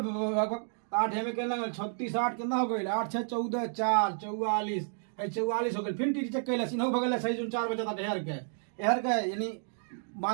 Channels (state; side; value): silent; left; digital silence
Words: 8 है में कहना 36 8 कितना हो गई, 8 6 14 4 44, 44 हो गई। फिर टीटी चेक कैलस, इन्हों भगलस है जो 4 बचा था एहर के यानी